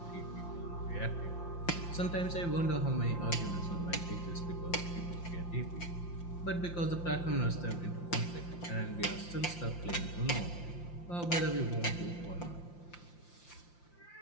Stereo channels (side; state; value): right; late; 5.8 ms